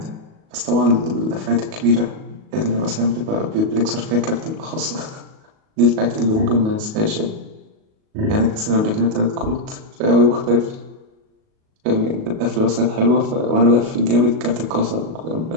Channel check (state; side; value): late; left; 37 ms